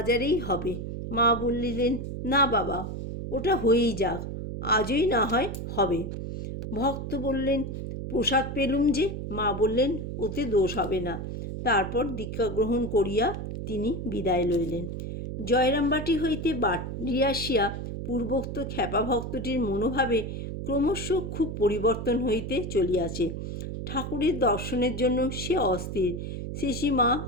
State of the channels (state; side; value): noise; right; hum, 6 dB below the sound